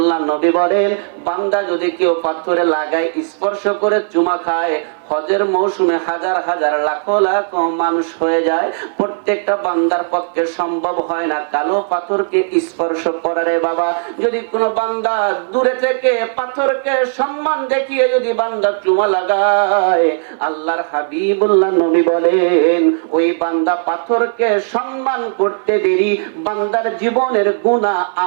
নবী বলেন, বান্দা যদি কেউ পাথরে লাগায়, স্পর্শ করে চুমা খায়, হজের মৌসুমে হাজার হাজার লাখ লাখ মানুষ হয়ে যায়, প্রত্যেকটা বান্দার পক্ষে সম্ভব হয় না কালো পাথরকে স্পর্শ করারে বাবা। যদি কোনো বান্দা দূরে থেকে পাথরকে সম্মান দেখিয়ে যদি বান্দা চুমা লাগায়, আল্লাহর হাবিবুল্লাহ নবী বলেন ওই বান্দা পাথরকে সম্মান করতে দেরি, বান্দার জীবনের গুনাহ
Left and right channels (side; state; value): left; silent; 59 dB below the other